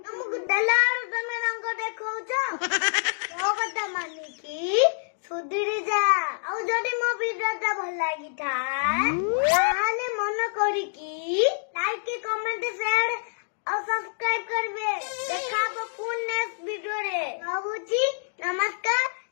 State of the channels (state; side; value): silent; right; digital silence